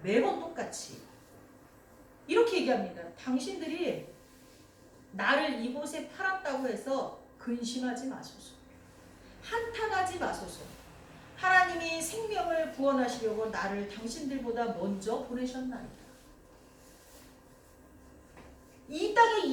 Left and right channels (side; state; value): both; identical; correlation 1.00